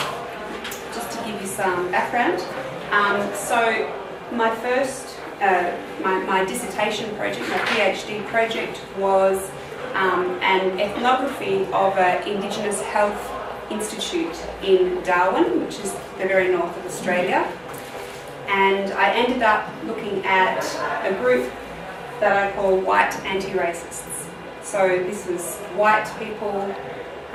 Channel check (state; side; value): identical; both; correlation 1.00